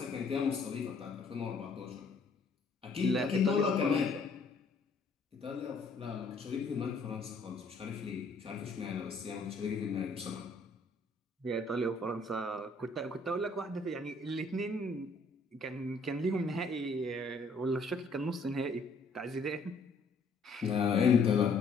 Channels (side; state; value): right; quieter; 3.4 dB